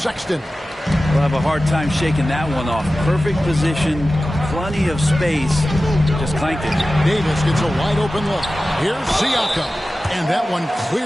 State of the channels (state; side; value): normal; both; correlation 0.95